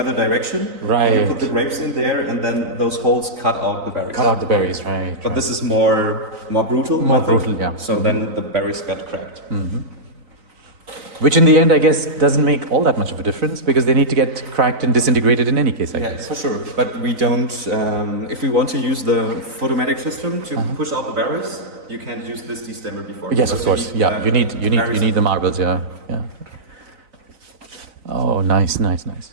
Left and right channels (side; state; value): left; late; 3.9 ms